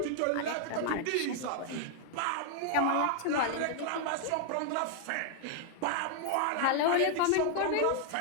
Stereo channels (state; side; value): different; both; correlation 0.00